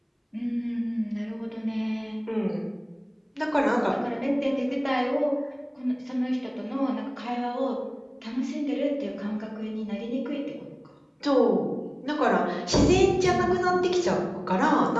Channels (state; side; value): identical; both; correlation 1.00